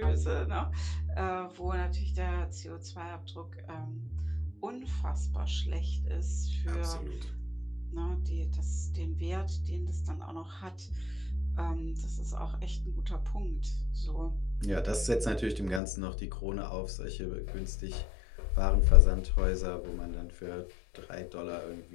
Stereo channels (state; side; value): drops out; right; at 15.8 s